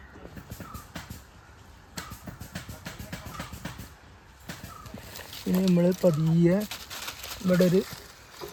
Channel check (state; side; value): identical; both; correlation 1.00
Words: ഇനി നമ്മൾ പതിയെ ഇവിടെ ഒരു